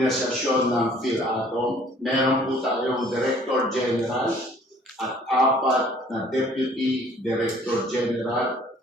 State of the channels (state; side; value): normal; both; correlation 0.55